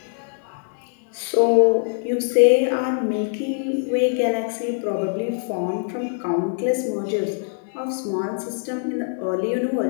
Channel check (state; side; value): silent; right; 63 dB below the other